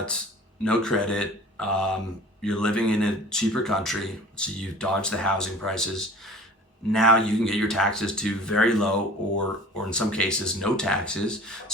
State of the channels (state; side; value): normal; both; correlation 0.45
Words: no credit. You're living in a cheaper country, so you've dodged the housing prices. Now you can get your taxes to very low or in some cases no taxes.